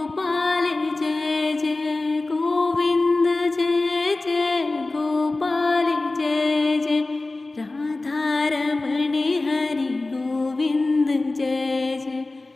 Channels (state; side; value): quieter; right; 3.1 dB